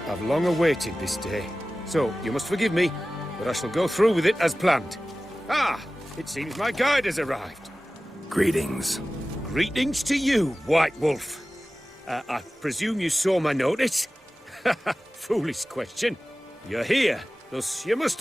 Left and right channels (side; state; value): both; normal; correlation 0.96